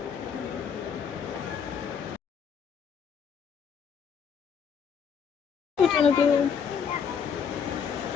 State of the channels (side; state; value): right; quieter; 7.0 dB